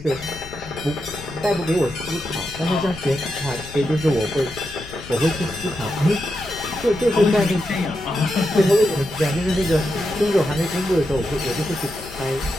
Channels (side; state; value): left; noise; rumble, 16 dB below the sound